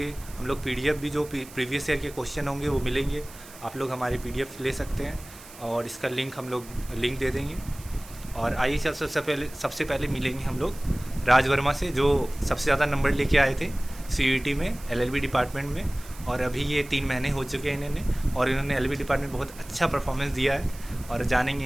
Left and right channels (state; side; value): noise; right; hiss, 19 dB below the sound